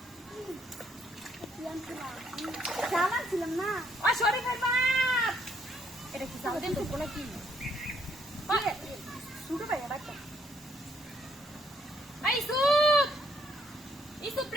জামাই ছিলাম না ও শরীফের বাপ এটা কি জামাই দিন তো নাকি শুরু ভাই বাচ্চা আই সুপ ইসুপ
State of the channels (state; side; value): normal; both; correlation 0.70